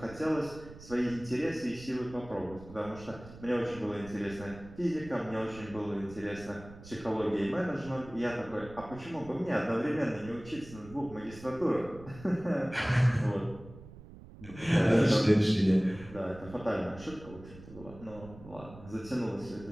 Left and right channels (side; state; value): right; noise; rumble, 17 dB below the sound